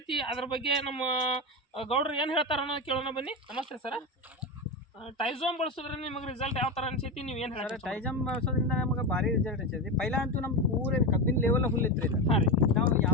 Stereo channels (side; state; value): both; normal; correlation 0.17